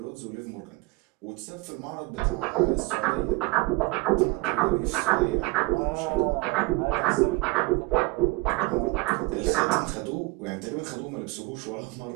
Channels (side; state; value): left; quieter; 24.5 dB